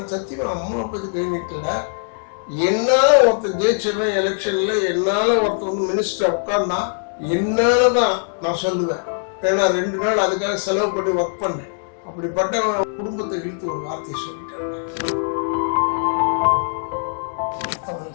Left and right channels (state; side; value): silent; right; digital silence